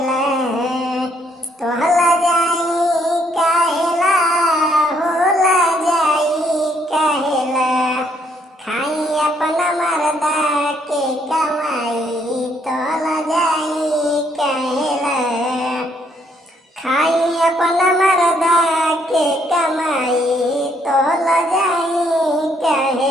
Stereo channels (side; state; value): both; normal; correlation 0.70